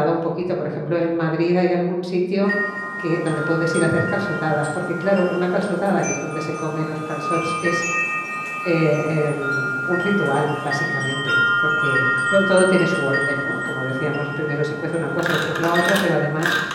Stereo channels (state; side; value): identical; both; correlation 1.00